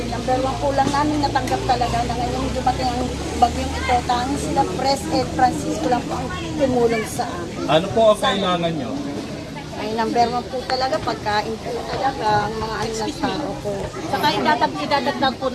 number 1 po lang namin natanggap talaga na ngayong dumating ang bagyong ito. Tanging sila Pres Ed Francisco lang po ang tumulong sa amin. Ano po ang kailangan nyo? Ay number 1 po talaga, pagkain po talaga, ang mga ano ng tao po. Saka idadagdag po,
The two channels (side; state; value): both; identical; correlation 1.00